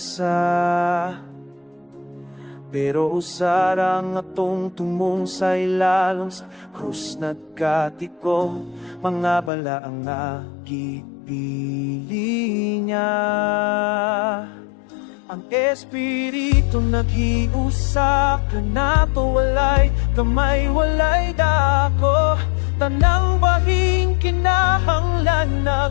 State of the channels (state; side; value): drops out; right; at 9.5 s